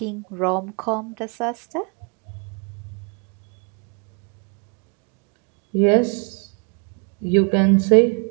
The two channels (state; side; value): quieter; left; 36.3 dB